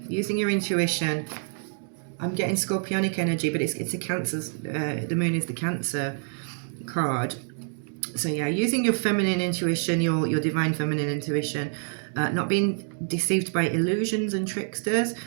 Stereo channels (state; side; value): silent; left; 60 dB below the other